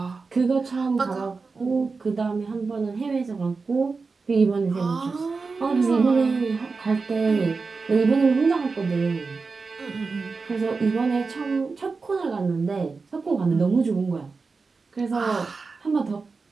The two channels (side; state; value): left; quieter; 4.4 dB